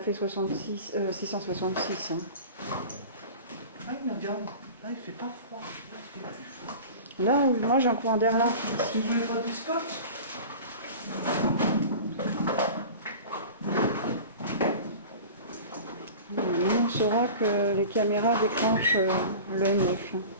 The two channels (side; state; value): both; inverted; correlation -0.37